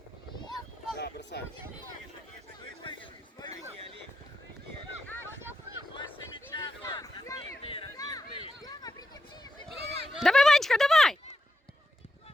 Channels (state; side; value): normal; both; correlation 0.86